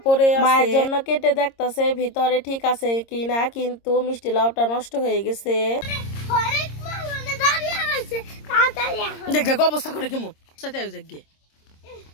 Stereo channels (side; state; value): right; late; 26 ms